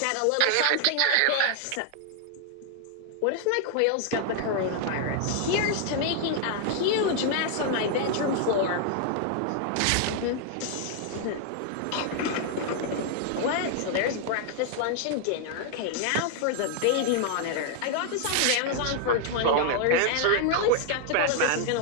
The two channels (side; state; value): both; different; correlation 0.00